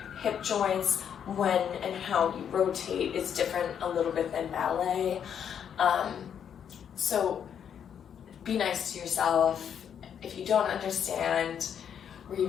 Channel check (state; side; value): quieter; right; 8.4 dB